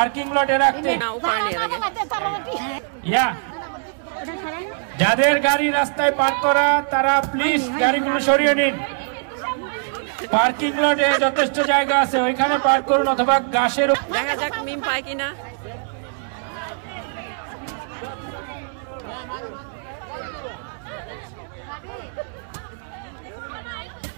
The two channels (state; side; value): silent; left; digital silence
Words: লটে রাখতে। যাদের গাড়ি রাস্তায় পার্ক করা তারা প্লিজ গাড়িগুলো সরিয়ে নিন। পার্কিং লটে যথেষ্ট জায়গা আছে, ওইখানে পার্ক করুন, অথবা গাছের। দেখা যাক মিম পায় কিনা।